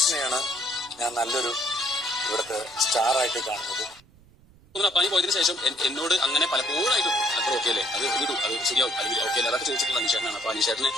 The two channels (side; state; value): right; noise; rumble, 27 dB below the sound